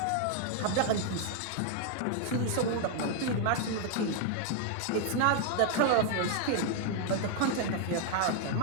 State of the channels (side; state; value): both; different; correlation 0.00